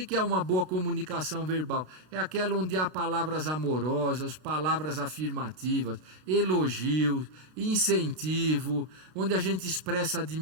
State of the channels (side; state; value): left; late; 32 ms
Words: é uma boa comunicação verbal? É aquela onde há palavras amorosas, palavras afirmativas, elogios, incentivo, onde a gente expressa